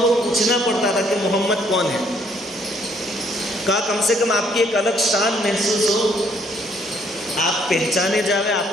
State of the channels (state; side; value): normal; both; correlation 0.66